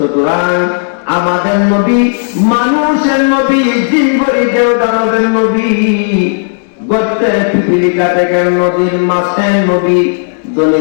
আমাদের নবী মানুষের নবী, জিনগরিদেও দানবের নবী, গর্তের পিপিলিকা থেকে নদীর মাছের নবী, ধনী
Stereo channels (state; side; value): silent; right; digital silence